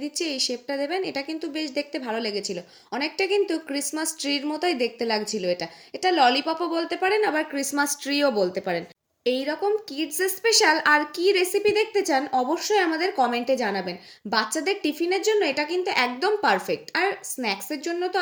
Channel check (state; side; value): identical; both; correlation 1.00